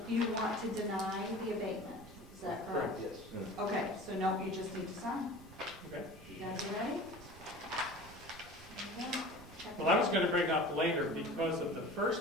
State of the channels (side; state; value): right; noise; rumble, 19 dB below the sound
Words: want to deny the abatement, is that correct? Yes. Okay, so no, you just need to sign. Okay. You guys ready? There you go. Check Well, I was gonna bring up later, because of the